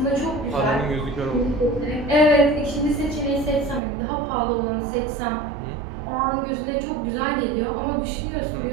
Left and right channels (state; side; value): drops out; left; at 3.8 s